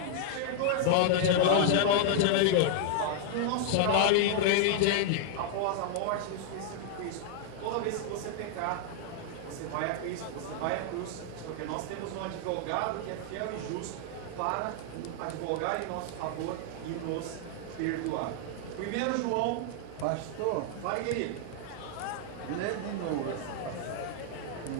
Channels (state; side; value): different; both; correlation 0.00